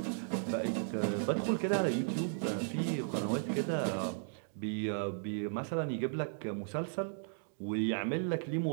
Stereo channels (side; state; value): left; silent; digital silence